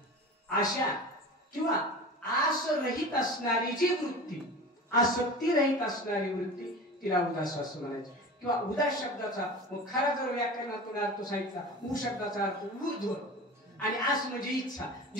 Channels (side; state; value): both; normal; correlation 0.34